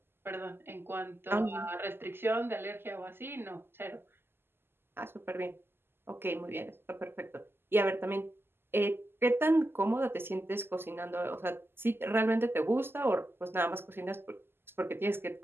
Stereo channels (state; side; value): late; left; 0.11 ms